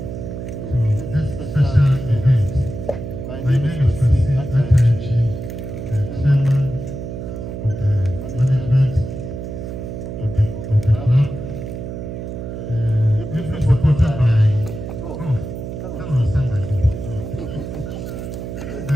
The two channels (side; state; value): right; noise; hum, 7 dB below the sound